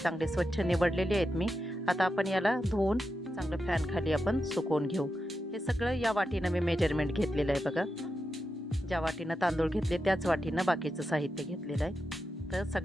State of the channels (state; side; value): normal; both; correlation 0.88